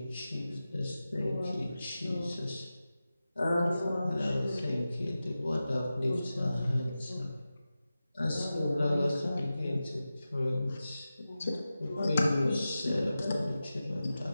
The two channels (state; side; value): inverted; both; correlation -0.94